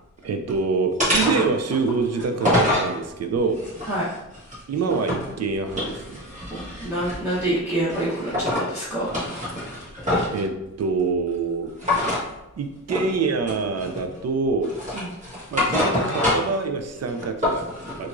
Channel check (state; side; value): normal; both; correlation 0.20